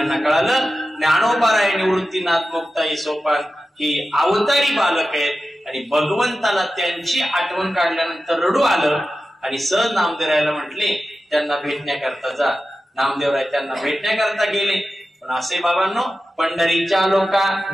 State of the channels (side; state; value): both; normal; correlation 0.93